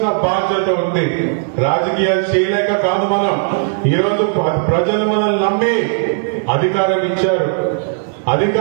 బాధ్యత ఉంది. రాజకీయాలు చేయలేక కాదు మనం. ఈరోజు ప్రజలు మనల్ని నమ్మి అధికారం ఇచ్చారు.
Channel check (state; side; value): silent; left; digital silence